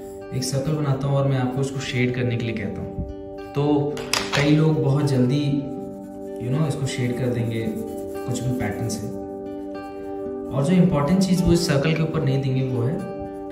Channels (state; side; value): identical; both; correlation 1.00